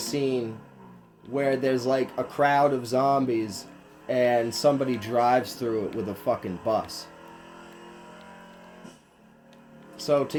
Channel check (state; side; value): identical; both; correlation 1.00